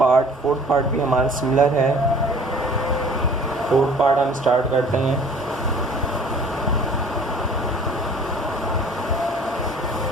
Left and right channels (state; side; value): normal; both; correlation 0.50